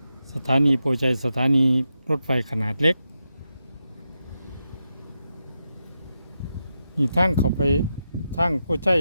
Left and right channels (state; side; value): inverted; both; correlation -0.87